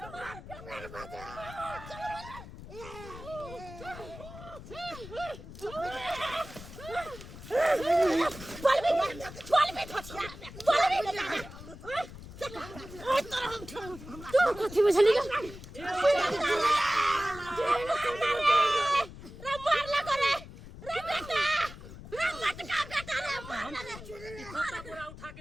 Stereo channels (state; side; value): noise; left; rumble, 14 dB below the sound